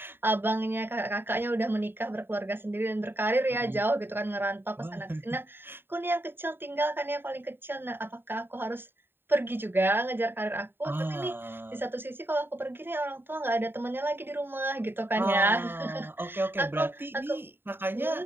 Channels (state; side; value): late; left; 0.10 ms